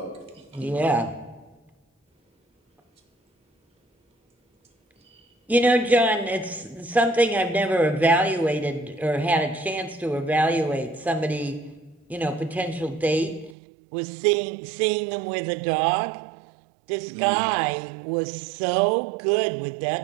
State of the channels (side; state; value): left; drops out; at 13.6 s